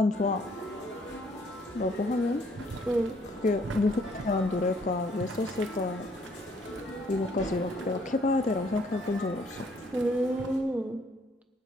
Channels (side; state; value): both; normal; correlation 0.64